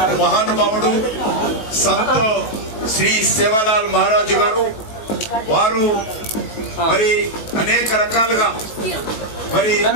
మహానుభావుడు సంత్ శ్రీ సేవాలాల్ మహారాజు గారు. వారు మరి అనేక రకాలుగా మరి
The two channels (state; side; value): late; right; 19 ms